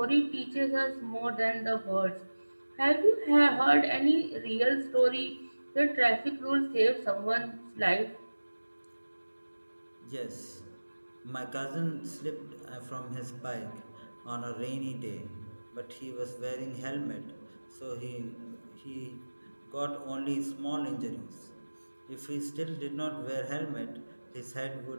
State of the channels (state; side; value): inverted; both; correlation -1.00